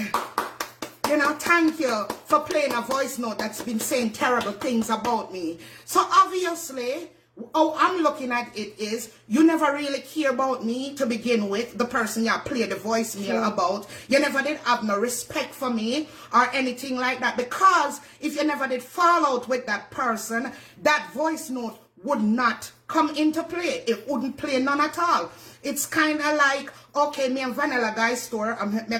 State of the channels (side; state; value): both; identical; correlation 1.00